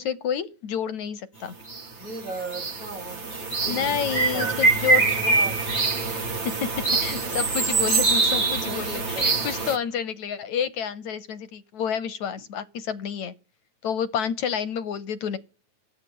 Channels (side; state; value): right; late; 9.2 ms